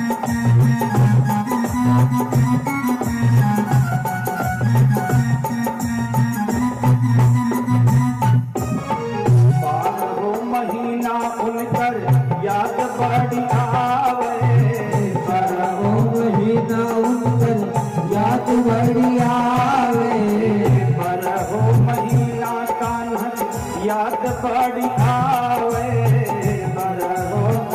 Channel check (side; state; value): both; identical; correlation 1.00